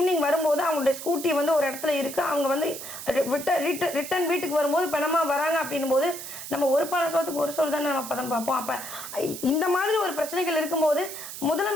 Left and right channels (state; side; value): noise; right; hiss, 10 dB below the sound